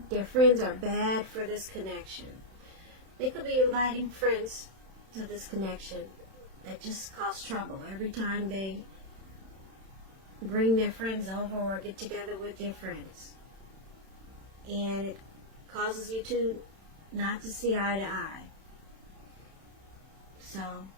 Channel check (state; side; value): late; left; 31 ms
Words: friends are bad for this connection. They could be inviting friends to this connection that just cause trouble every time they bring their friends over or get together with their friends. And it causes you to not to see eye to eye. So,